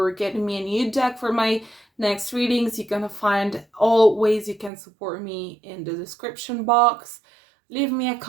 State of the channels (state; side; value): drops out; left; at 4.7 s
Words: getting me a new deck for my next readings, you're gonna find all ways you can support me in the description box. Leave me a